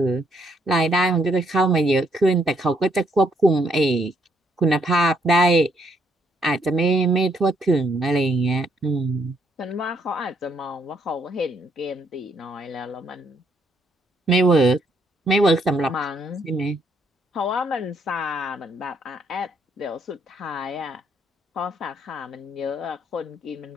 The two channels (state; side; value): normal; both; correlation 0.71